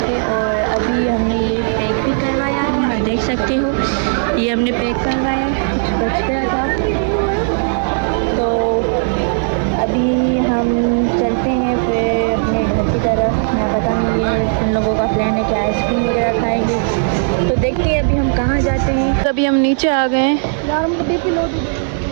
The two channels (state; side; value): silent; left; 69 dB below the other